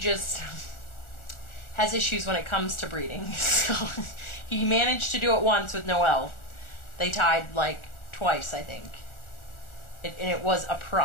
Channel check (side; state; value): right; late; 1.4 ms